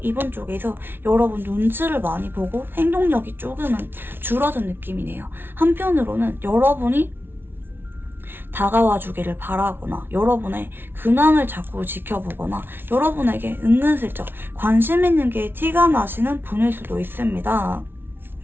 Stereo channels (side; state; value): left; late; 0.11 ms